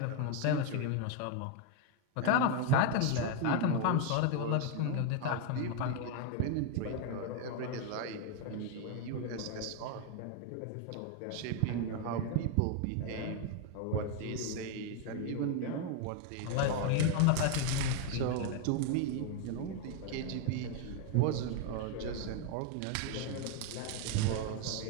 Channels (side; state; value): both; different; correlation 0.01